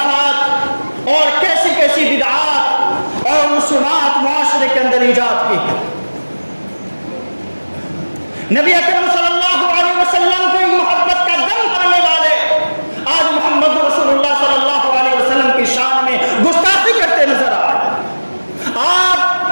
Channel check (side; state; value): both; inverted; correlation -1.00